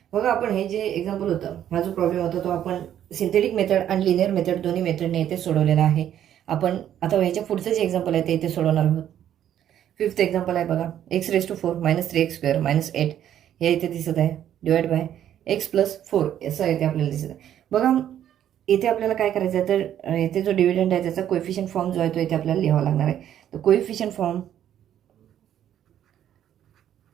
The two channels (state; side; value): quieter; left; 10.6 dB